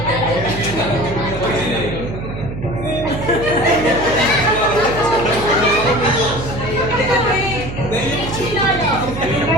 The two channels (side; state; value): right; noise; hum, 8 dB below the sound